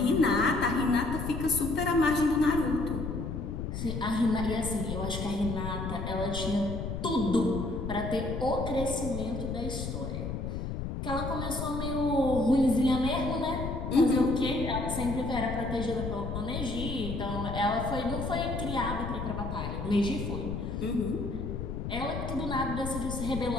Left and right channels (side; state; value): left; noise; rumble, 4 dB below the sound